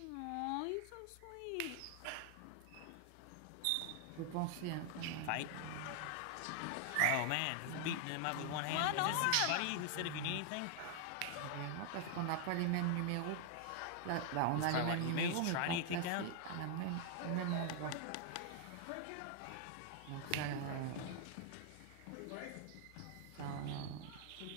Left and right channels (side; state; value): both; different; correlation 0.00